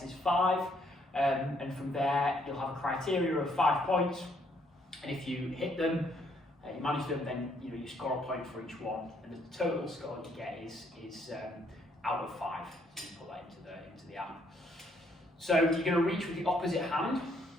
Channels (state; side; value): normal; both; correlation 0.69